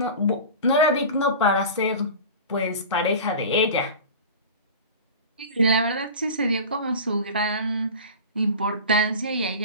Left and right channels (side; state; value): both; inverted; correlation -0.34